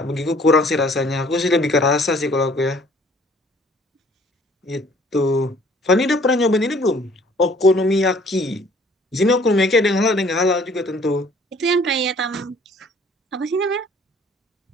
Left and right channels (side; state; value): both; normal; correlation 0.57